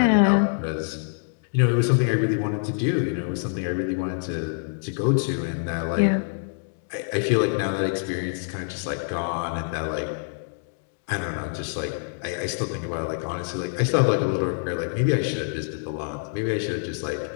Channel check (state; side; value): silent; right; digital silence